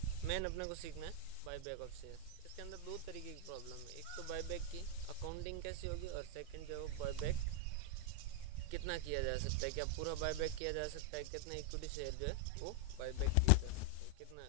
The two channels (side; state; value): both; different; correlation 0.00